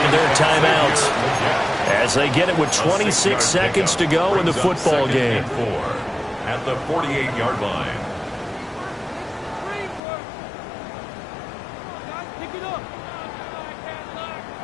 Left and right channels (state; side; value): drops out; right; at 10.0 s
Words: of their timeouts as they get it with 26 seconds to go in the football game. At the 48-yard line.